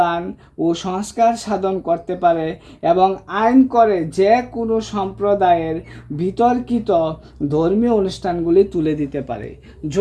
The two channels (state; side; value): identical; both; correlation 1.00